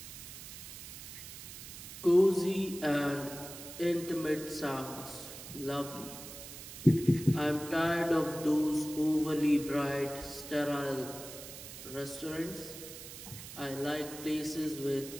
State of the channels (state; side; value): noise; right; hiss, 12 dB below the sound